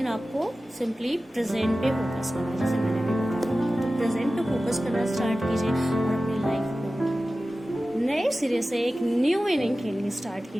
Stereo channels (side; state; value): both; normal; correlation 0.95